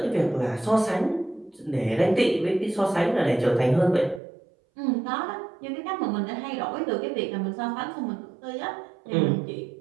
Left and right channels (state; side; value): drops out; left; at 4.2 s